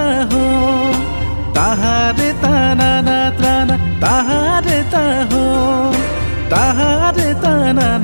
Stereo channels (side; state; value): both; inverted; correlation -1.00